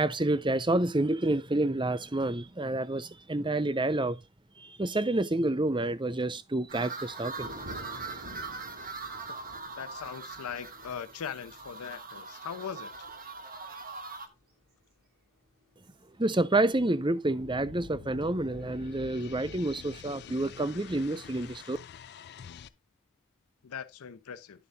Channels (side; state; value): both; normal; correlation 0.62